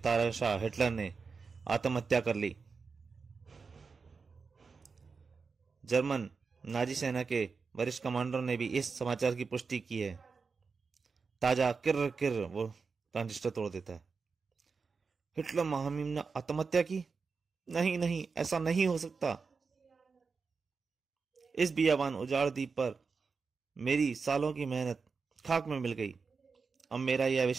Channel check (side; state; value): left; quieter; 4.9 dB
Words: हिटलर ने आत्महत्या कर ली। जर्मन नाजी सेना के वरिष्ठ कमांडरों ने भी इस समाचार की पुष्टि की है। ताजा किर किर वो ट्रांजिस्टर तोड़ देता है। हिटलर महामहिम ने आत्महत्या की? नहीं नहीं, ऐसा नहीं हो सकता। इस बियाबान उजाड़ द्वीप पर मेरी सालों की मेहनत खाक में मिल गई। अब मेरा यह